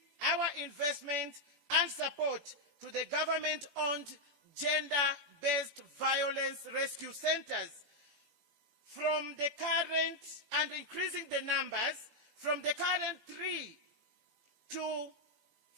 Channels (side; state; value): left; late; 17 ms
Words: our investment and support to the government-owned gender-based violence rescue centers from the current, and increasing the numbers from the current 3 to